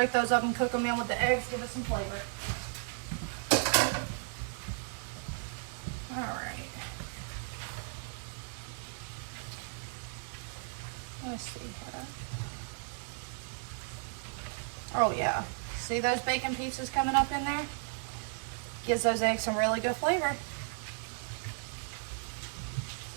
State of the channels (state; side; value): silent; left; 55 dB below the other